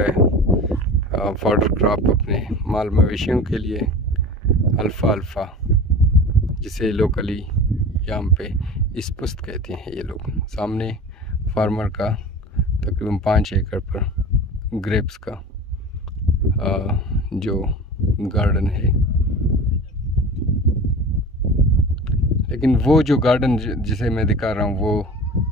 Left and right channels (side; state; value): both; normal; correlation 0.35